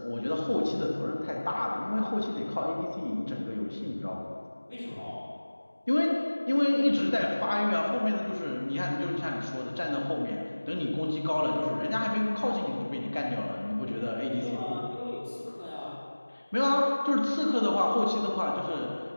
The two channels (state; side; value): inverted; both; correlation -1.00